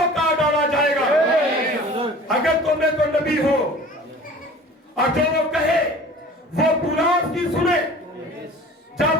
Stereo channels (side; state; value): both; normal; correlation 0.43